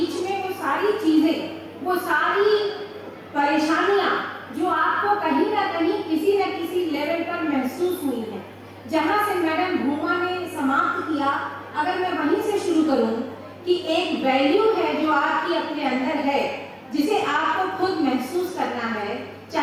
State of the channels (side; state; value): both; identical; correlation 1.00